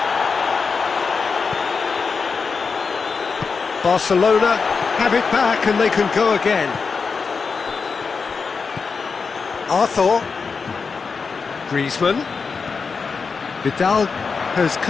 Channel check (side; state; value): right; quieter; 5.1 dB